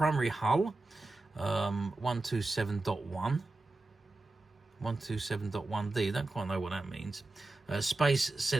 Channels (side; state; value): left; quieter; 3.1 dB